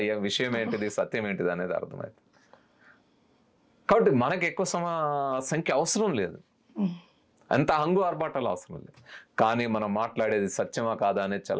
విషయం ఏంటిది, సత్యం ఏంటిది అనేది అర్థమవుతుంది. కాబట్టి మనకు ఎక్కువ సంఖ్య అవసరం లేదు, అంత హంగు ఆర్భాటాలు అవసరం లేదు. కానీ మనం మాట్లాడేది సత్యమా కాదా అనేది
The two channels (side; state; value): both; identical; correlation 1.00